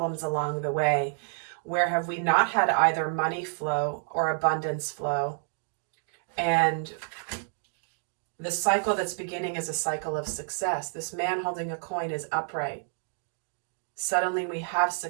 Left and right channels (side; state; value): left; silent; digital silence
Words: along the way. Where have we not had either money flow or abundance flow? And the cycle that's beginning is a cycle of success. This man holding a coin is upright. Suddenly we have